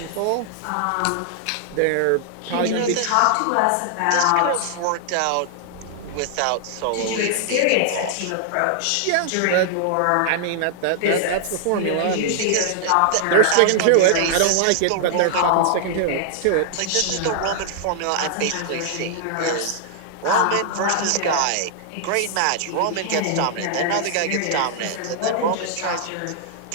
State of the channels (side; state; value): both; different; correlation -0.01